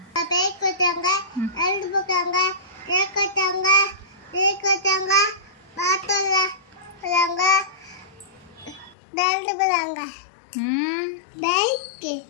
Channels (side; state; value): right; drops out; at 9.0 s